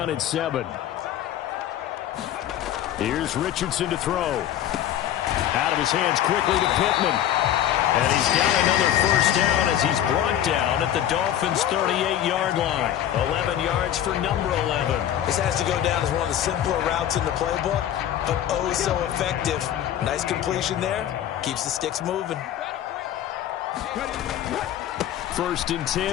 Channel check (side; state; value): right; quieter; 11.3 dB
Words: and 7. Here's Richardson to throw. Out of his hands quickly to Pittman. And he's got another first down as he's brought down at the Dolphins' 38-yard line. 11 yards for number 11. This has to go down as one of the simpler routes in the playbook, but oh so effective. Nice completion there. Keeps the sticks moving. 1st and